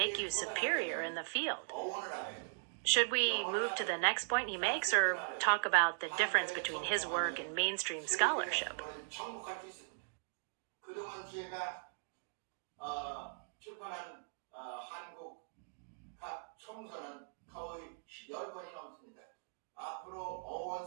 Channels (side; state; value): left; silent; digital silence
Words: you superior in the field. Should we move to the next point he makes, or talk about the difference between his work and mainstream scholarship? 그동안 제가 출판한 한국 각 총서는 거의 10권이 넘습니다. 앞으로 어원